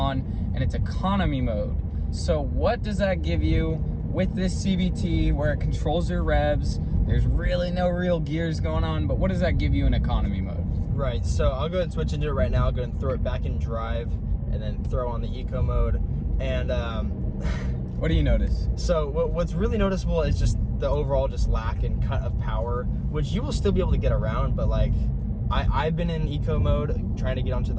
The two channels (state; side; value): identical; both; correlation 1.00